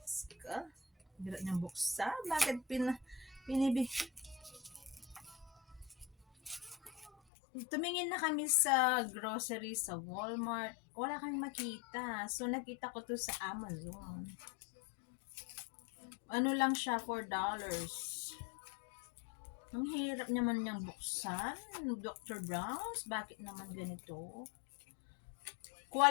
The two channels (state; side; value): drops out; right; at 7.1 s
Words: hirap niyang buksan. Bakit pinibig? Tumingin na kami sa grocery sa Walmart. Wala kami makita. So, nakita ko to sa Amazon. Ano lang siya, $4. Ang hirap naman niyang buksan. Dr. Brown's, bakit naman ganito?